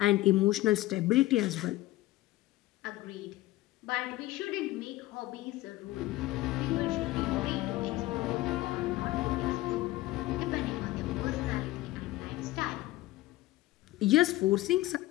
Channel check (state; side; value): quieter; right; 17.5 dB